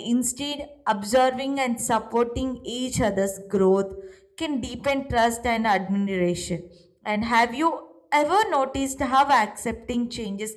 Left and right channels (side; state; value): both; identical; correlation 1.00